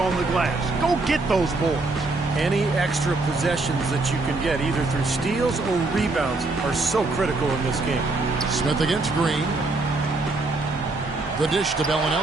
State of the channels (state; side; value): quieter; left; 3.3 dB